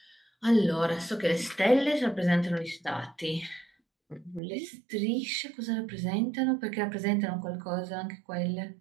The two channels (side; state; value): left; drops out; at 4.4 s